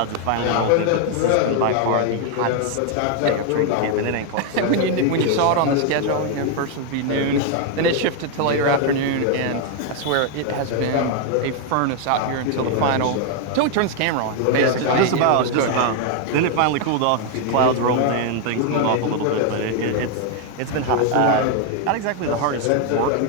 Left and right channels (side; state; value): both; different; correlation 0.00